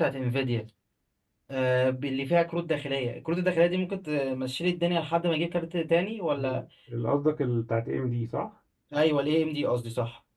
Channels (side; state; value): both; identical; correlation 1.00